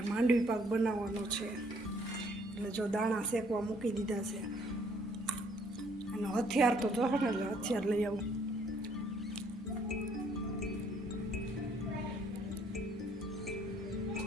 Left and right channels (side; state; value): both; normal; correlation 0.64